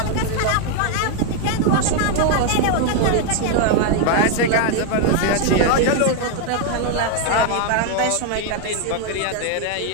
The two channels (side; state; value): both; different; correlation 0.01